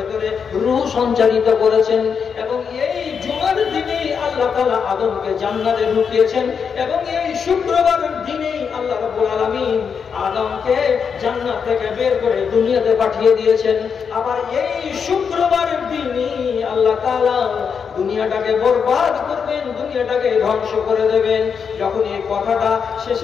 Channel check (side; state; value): right; quieter; 6.4 dB